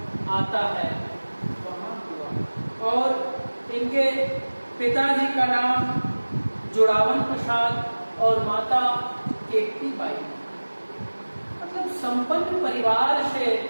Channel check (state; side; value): inverted; both; correlation -1.00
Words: आता है, वहाँ हुआ। और इनके पिताजी का नाम जुड़ावन प्रसाद और माता केकती बाई। मतलब संपन्न परिवार से